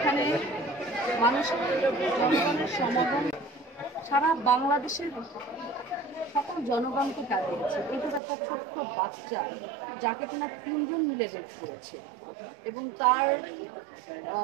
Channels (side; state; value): left; drops out; at 8.2 s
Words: মানুষের জনগণের সমাগম সারা বাংলাদেশের সকল জনগণকে কাটিয়েছে। কিন্তু একটা ছোট্ট বাচ্চা যাকে কিনা 3 জন মিলে রেপ করেছে এবং তার